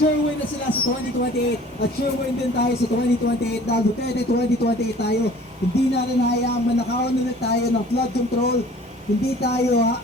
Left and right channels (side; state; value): both; normal; correlation 0.49